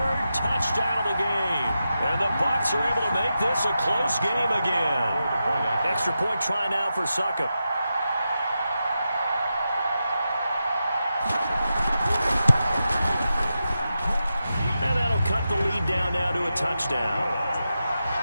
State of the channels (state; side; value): inverted; both; correlation -0.89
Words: touchdown of the game. And the Bucs are able to make this a close game again. Extra point try now for Suckup. And that'll cut the lead down now to a touchdown.